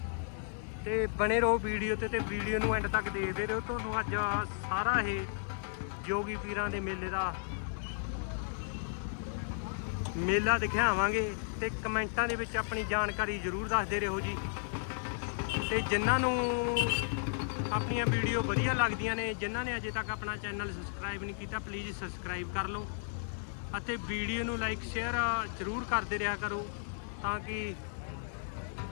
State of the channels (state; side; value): silent; right; 55 dB below the other